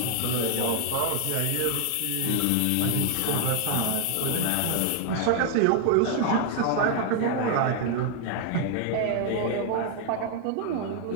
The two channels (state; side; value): different; both; correlation 0.00